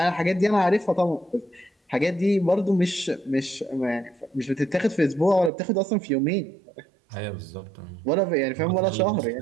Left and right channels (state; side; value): drops out; left; at 5.5 s